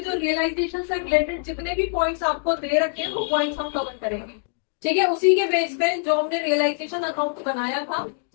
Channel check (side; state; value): right; silent; 63 dB below the other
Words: रियलाइजेशन से रिलेटेड जितने भी पॉइंट्स आपको दे रखे हैं वो पॉइंट्स हम कवर करेंगे। ठीक है, उसी के बेस पे जो हमने रियलाइजेशन अकाउंट बनाया था